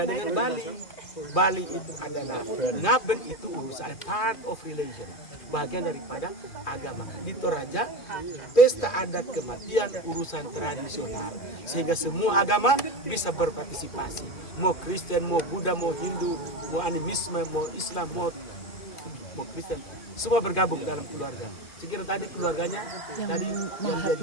dengan Bali. Bali itu adalah ngaben, itu urusan part of religion, bagian daripada agama. Di Toraja, pesta adat kematian urusan tradisional, sehingga semua agama bisa berpartisipasi. Mau Kristen, mau Buddha, mau Hindu, mau animisme, mau Islam, mau Kristen, semua bergabung dalam keluarga. Sekira tadi keluarganya yang dia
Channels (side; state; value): right; late; 2.4 ms